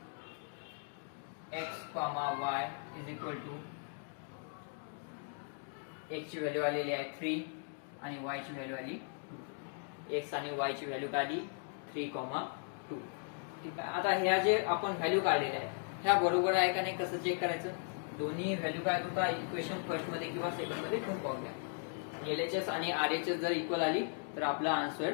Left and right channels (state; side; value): silent; right; 53 dB below the other